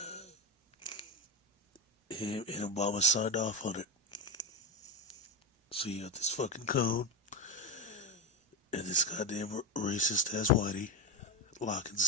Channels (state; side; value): normal; both; correlation 0.14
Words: And Obama signed off on it. So you got this fucking code and this goddamn racist ass whitey lock and